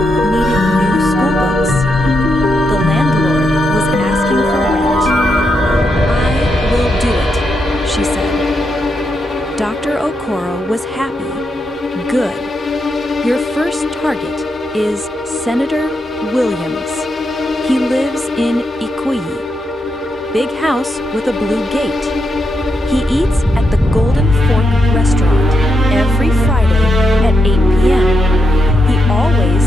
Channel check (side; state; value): both; normal; correlation 0.83